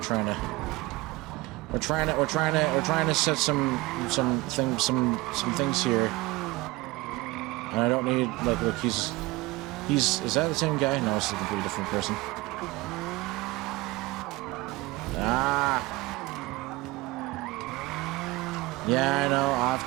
to set some things here, and I don't need, like, look, he's is that the same guy? No, it's a completely different person. Ah, yeah, I know, off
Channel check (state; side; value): quieter; left; 20.6 dB